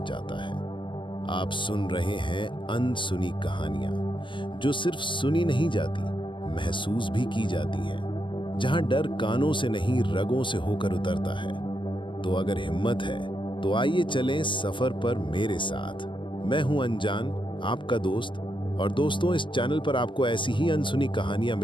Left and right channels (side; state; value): right; late; 0.24 ms